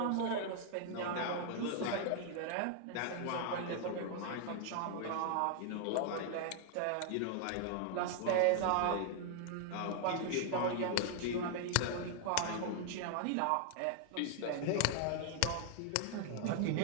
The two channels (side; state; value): both; different; correlation 0.00